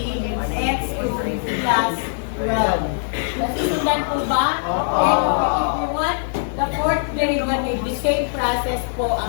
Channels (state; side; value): silent; right; digital silence